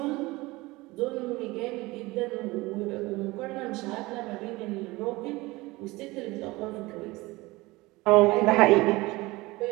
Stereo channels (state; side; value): quieter; left; 21.4 dB